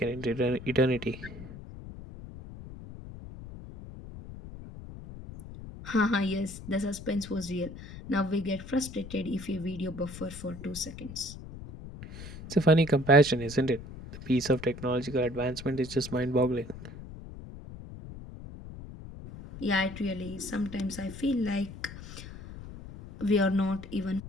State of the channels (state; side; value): noise; left; rumble, 13 dB below the sound